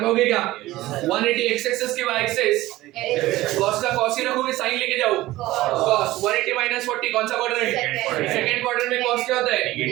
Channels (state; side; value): quieter; left; 17.2 dB